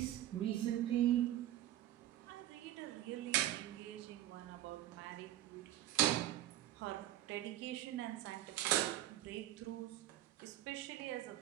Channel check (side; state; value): left; quieter; 13.4 dB